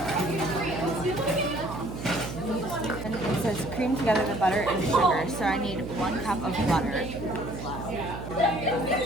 And it says cream together the butter and sugar, so I need 1 cup of butter.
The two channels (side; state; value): right; noise; hum, 9 dB below the sound